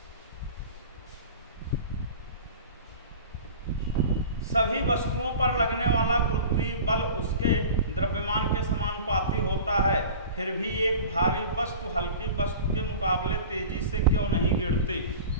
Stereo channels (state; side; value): inverted; both; correlation -0.38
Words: सभी वस्तुओं पर लगने वाला गुरुत्वीय बल उसके द्रव्यमान के समानुपाती होता है, फिर भी एक भारी वस्तु हल्की वस्तु के मुकाबले तेजी से क्यों नहीं गिरती?